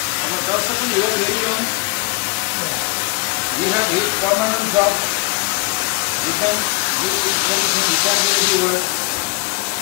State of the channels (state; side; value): quieter; right; 25.5 dB